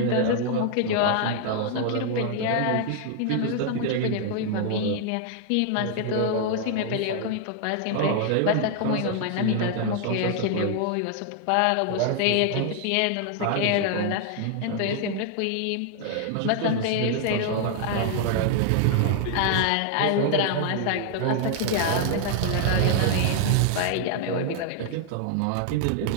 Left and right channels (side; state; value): both; different; correlation 0.00